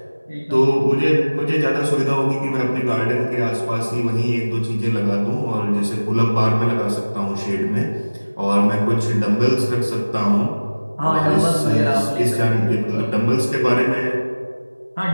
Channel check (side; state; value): both; inverted; correlation -1.00